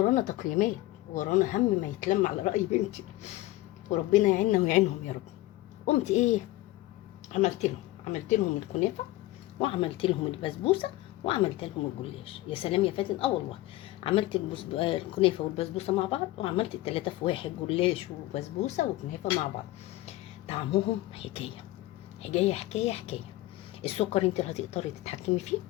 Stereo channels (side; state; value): right; quieter; 17.3 dB